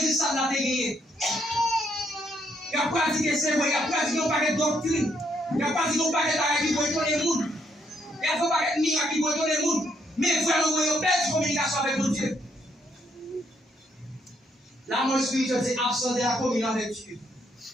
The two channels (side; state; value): both; normal; correlation 0.73